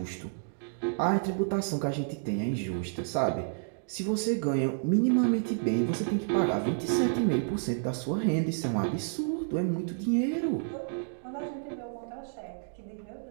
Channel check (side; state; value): left; silent; digital silence